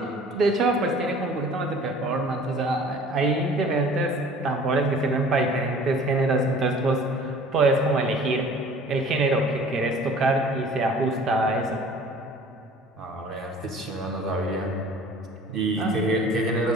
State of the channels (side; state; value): both; normal; correlation 0.48